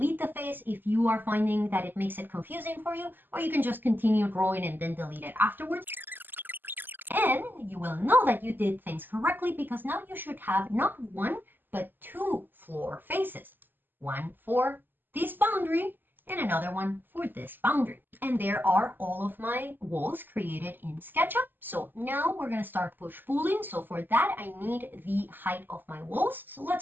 the face if you are finding that it makes it confusing for you, or you can just continue drawing and then delete it afterwards. And you will know that you did things correctly because now you should have not one, but two floor faces. One for this boundary and another one for this boundary. And there are all of my walls created in SketchUp. So now we're going to start push-pulling. So for that, I need the height of my walls. So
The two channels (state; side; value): late; left; 0.090 ms